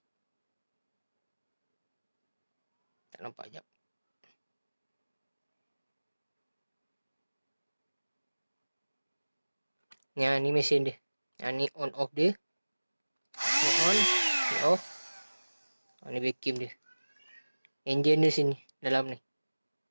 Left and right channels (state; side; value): inverted; both; correlation -1.00